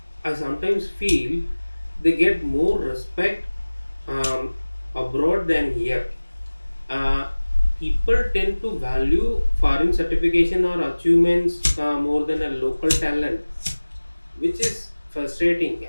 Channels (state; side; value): inverted; both; correlation -1.00